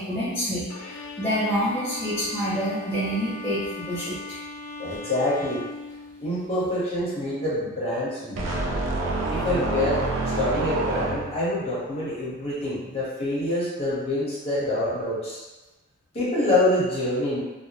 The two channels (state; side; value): normal; both; correlation 0.32